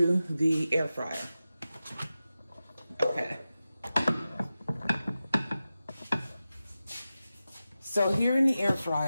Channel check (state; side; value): inverted; both; correlation -0.93